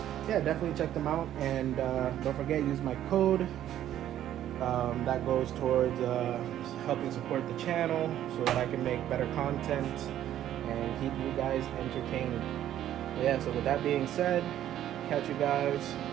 yeah, definitely check them out, and don't forget, use my code. That goes towards helping support the channel, so that I can make better content and keep you guys entertained. But yeah, so with that being said, catch you guys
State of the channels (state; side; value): quieter; left; 11.8 dB